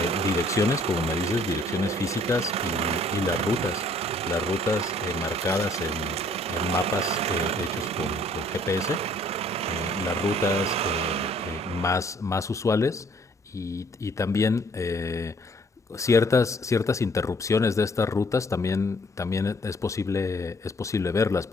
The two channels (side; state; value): both; normal; correlation 0.60